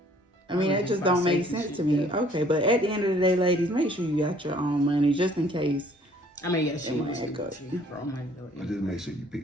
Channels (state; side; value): normal; both; correlation 0.58